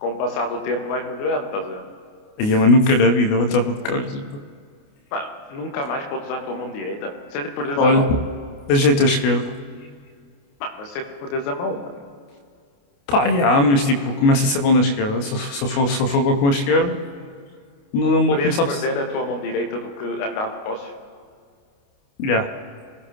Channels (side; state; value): right; late; 29 ms